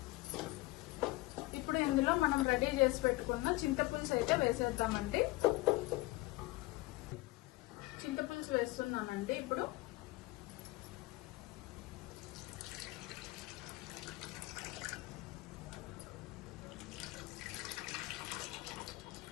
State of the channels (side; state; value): right; quieter; 20.7 dB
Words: ఇప్పుడు ఇందులో మనం రెడీ చేసి పెట్టుకున్న చింతపులుసు అయితే వేసేద్దామండి. చింతపులుసు వేస్తున్నానండి. ఇప్పుడు